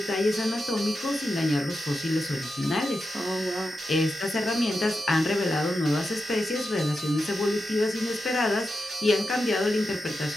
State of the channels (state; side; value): normal; both; correlation 0.89